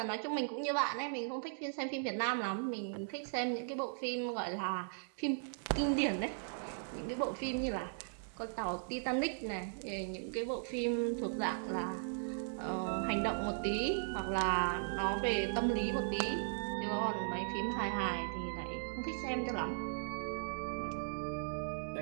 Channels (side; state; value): left; silent; digital silence